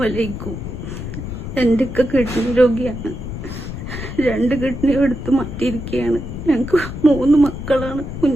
എൻ്റെ കിഡ്നി രോഗിയാണ്. 2 കിഡ്നി എടുത്ത് മാറ്റിയിരിക്കുകയാണ്. ഞങ്ങൾക്ക് 3 മക്കളാണ്,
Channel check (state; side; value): noise; left; rumble, 8 dB below the sound